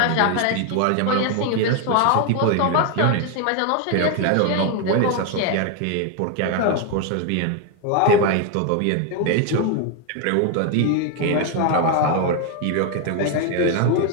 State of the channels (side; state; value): both; different; correlation 0.01